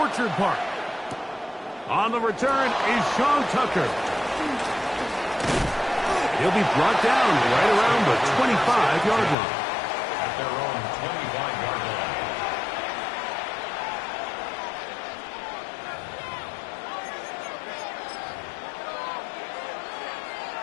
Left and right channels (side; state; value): right; drops out; at 9.3 s